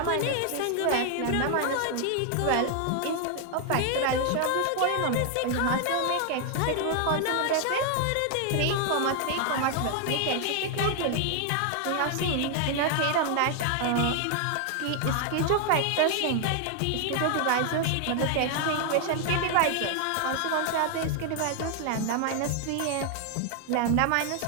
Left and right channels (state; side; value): different; both; correlation 0.00